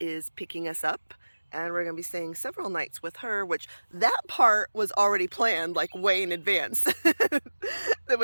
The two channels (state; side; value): inverted; both; correlation -1.00